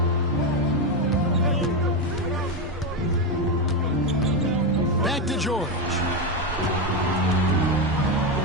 Back to George.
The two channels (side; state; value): both; normal; correlation 0.10